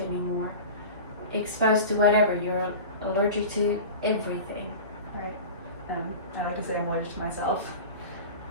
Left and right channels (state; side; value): inverted; both; correlation -0.33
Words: Exposed to whatever, you're allergic to everything. Right. I like to say I'm allergic to myself.